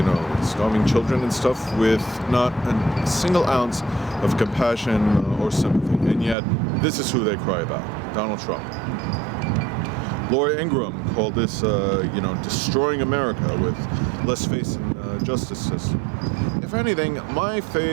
starving children and stuff, with not a single ounce of compassion or sympathy. And yet, this is who they cry about, Donald Trump. Laura Ingraham called this, destroying America with less faith in the justice system. If anything, my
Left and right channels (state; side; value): drops out; left; at 6.4 s